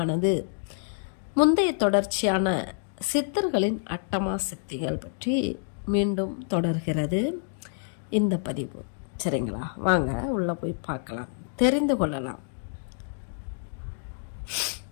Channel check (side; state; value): right; silent; digital silence